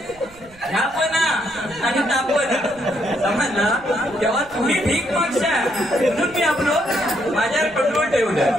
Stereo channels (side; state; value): right; noise; rumble, 25 dB below the sound